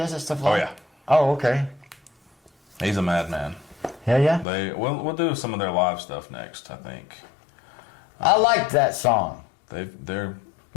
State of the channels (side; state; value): right; drops out; at 4.5 s